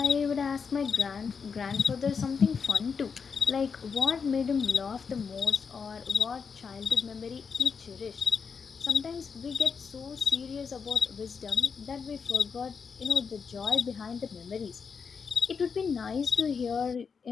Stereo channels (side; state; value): right; quieter; 5.9 dB